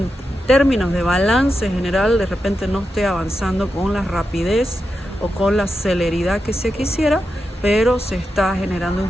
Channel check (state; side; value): normal; both; correlation 0.88